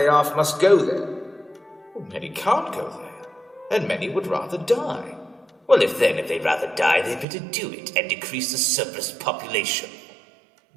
off must go there. Well, many can't go there, and many would rather die. Well, if they'd rather die, they'd better do it and decrease the surplus population.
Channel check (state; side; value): drops out; left; at 7.2 s